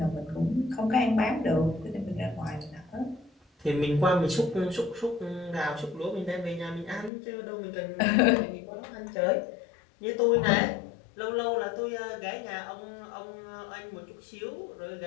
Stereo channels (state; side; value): drops out; right; at 7.1 s